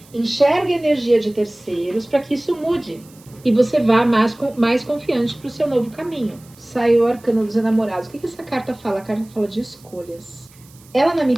enxergue a energia de terceiros, para que isso mude. E você vá mais confiante para o seu novo caminho. Saiu o arcano dos enamorados. O que essa carta fala? A carta fala de escolhas. Ela, na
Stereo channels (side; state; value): right; noise; hiss, 26 dB below the sound